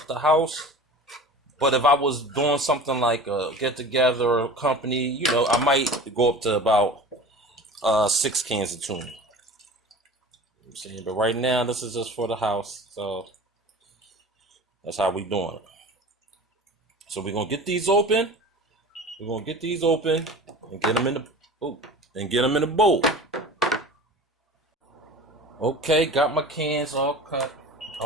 house. But if I was doing something like a get together or company, you know, I might go up to about 6 cans of tuna. I'm saying, but right now this is just for the house, so that's how we doing it. So we're gonna get these open. We're gonna get these open and get them in the bowl. Okay, got my cans all cut,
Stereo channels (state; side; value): normal; both; correlation 0.38